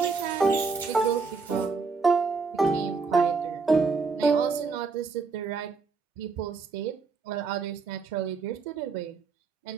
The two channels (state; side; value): quieter; left; 4.6 dB